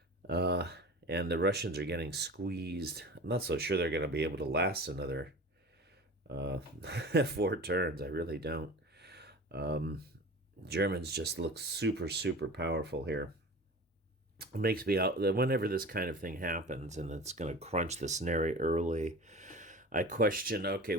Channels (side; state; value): both; normal; correlation 0.36